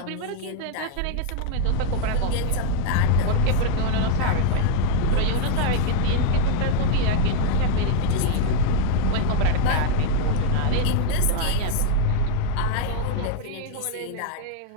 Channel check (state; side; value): different; both; correlation 0.00